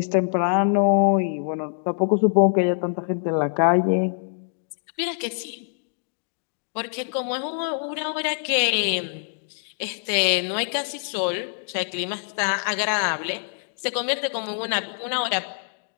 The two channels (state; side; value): silent; right; digital silence